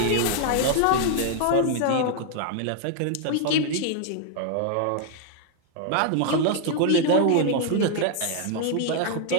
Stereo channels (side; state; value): both; different; correlation 0.00